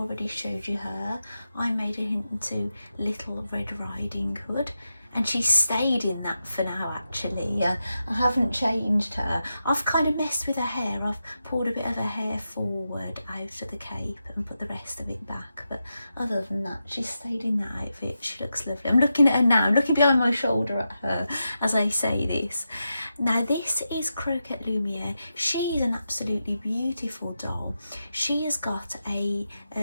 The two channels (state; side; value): inverted; both; correlation -0.88